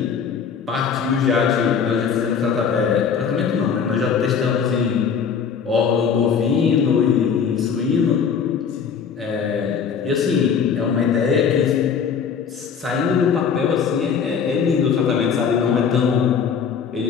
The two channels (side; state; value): right; quieter; 6.7 dB